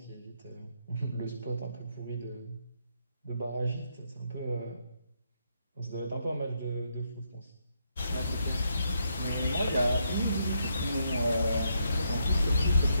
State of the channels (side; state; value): both; inverted; correlation -0.77